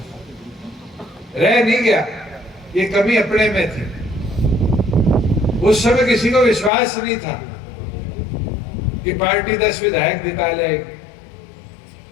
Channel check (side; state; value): right; drops out; at 6.7 s